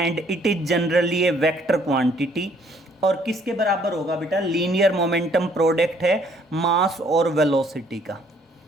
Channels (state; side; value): normal; both; correlation 0.63